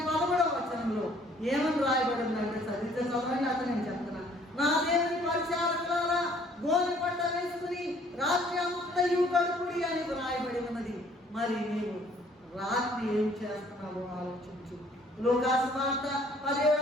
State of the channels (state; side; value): normal; both; correlation 0.59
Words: ఏమని రాయబడిందంటే చదివితే చదవండి. అతను నేను చెప్తున్నా. నా దేవుని పరిచారకులారా గోనె పట్ట వేసుకుని రాత్రి అంతయు గడుపుడి అని రాయబడి ఉన్నది. మరి నీవు రాత్రి ఏం చేస్తున్నావో ఆలోచించు. లూకాసు వార్త